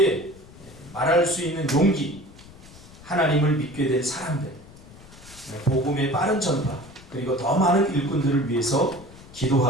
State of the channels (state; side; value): noise; left; rumble, 20 dB below the sound